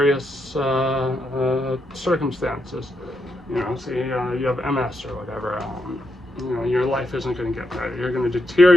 circumstances. You know, say you have MS or whatever, you know, your life isn't going to get better. You're going to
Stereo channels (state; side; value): normal; both; correlation 0.82